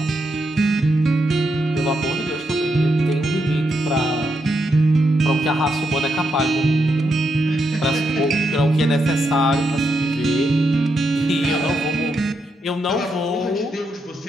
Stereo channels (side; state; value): both; normal; correlation 0.82